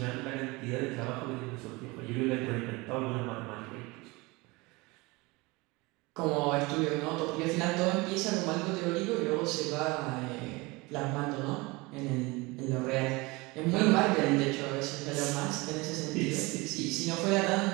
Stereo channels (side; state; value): left; quieter; 24.2 dB